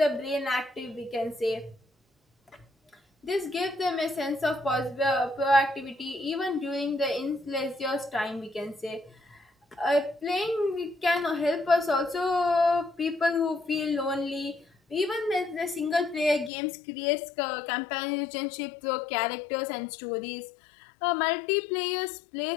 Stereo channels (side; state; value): right; drops out; at 16.5 s